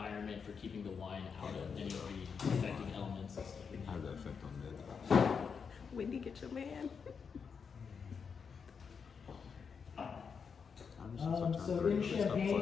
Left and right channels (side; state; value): right; quieter; 6.1 dB